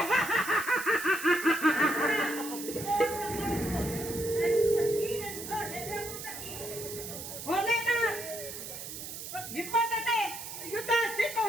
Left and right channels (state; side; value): noise; right; hiss, 9 dB below the sound